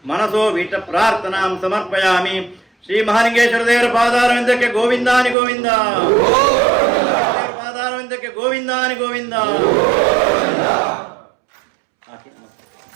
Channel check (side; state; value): left; drops out; at 5.4 s